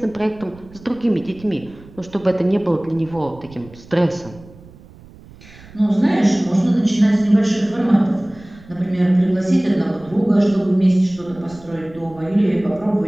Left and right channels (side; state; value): right; noise; rumble, 21 dB below the sound